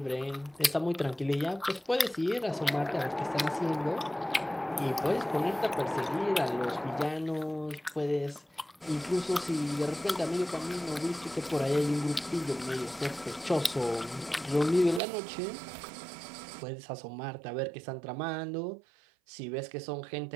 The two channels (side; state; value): left; drops out; at 15.0 s